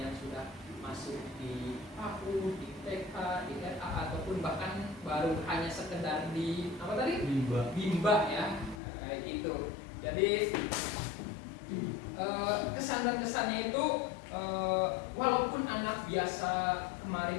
yang sudah masuk di PAUD, di TK, di RA, ataupun bahkan baru hanya sekedar di apa tadi? Bimba ya, kayak gitu. Jadi kesan dan kesannya itu walaupun anak biasa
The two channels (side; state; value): right; drops out; at 8.8 s